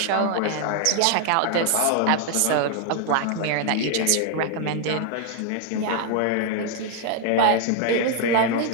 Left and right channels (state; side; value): different; both; correlation 0.00